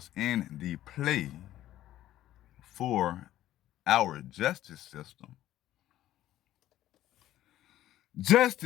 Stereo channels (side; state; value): right; quieter; 13.6 dB